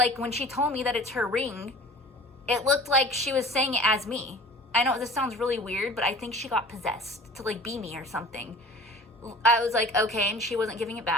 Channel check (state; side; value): normal; both; correlation 0.44